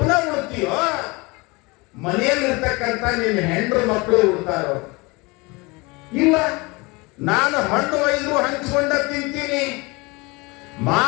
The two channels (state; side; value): quieter; right; 25.5 dB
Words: ಉಳ್ತೀಯೋ, ಮನೆಯಲ್ಲಿರ್ತಕ್ಕಂಥ ನಿನ್ನ ಹೆಂಡ್ರು ಮಕ್ಕಳು ಉಳ್ತಾರೋ? ಇಲ್ಲ, ನಾನು ಹಣ್ಣು ಒಯ್ದು ಹಂಚಿಕೊಂಡೆ ತಿಂತೀನಿ,